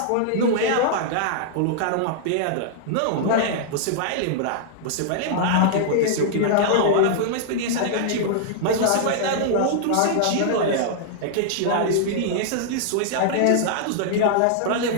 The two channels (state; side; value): different; both; correlation -0.01